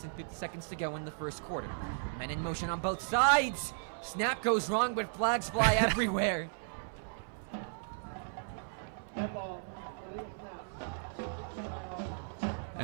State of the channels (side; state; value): left; silent; 54 dB below the other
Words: and 50 seconds to go in the first quarter. Men in motion on both sides. Snap goes wrong, but flags fly everywhere.